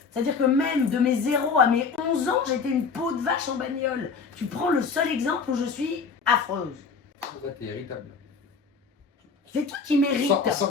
C'est-à-dire que même de mes 0 à mes 11 ans, j'étais une peau de vache en bagnole. Tu prends le seul exemple où je suis affreuse. Ouais, t'es irritable. C'est toi qui mérites.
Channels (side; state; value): right; quieter; 5.2 dB